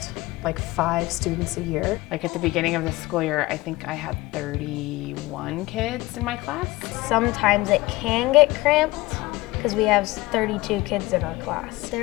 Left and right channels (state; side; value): quieter; right; 20.0 dB